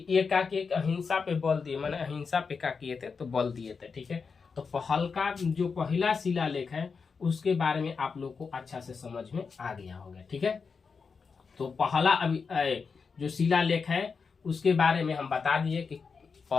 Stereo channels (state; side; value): quieter; right; 5.3 dB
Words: एक अहिंसा पे बल दिए, मैंने अहिंसा पे क्या किए थे, तो बल दिए थे। ठीक है, तो हल्का जो पहला शिलालेख है उसके बारे में आप लोग को अच्छा से समझ में आ गया होगा। ठीक है, तो पहला अभी जो शिलालेख है उसके बारे में हम बता दिए कि